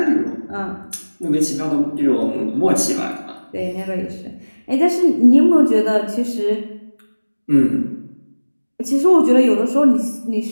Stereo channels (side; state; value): both; inverted; correlation -1.00